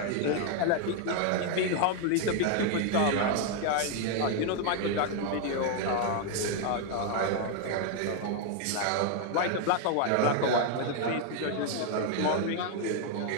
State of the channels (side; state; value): both; different; correlation 0.00